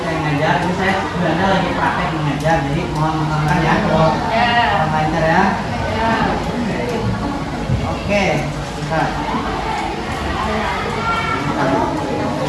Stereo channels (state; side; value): identical; both; correlation 1.00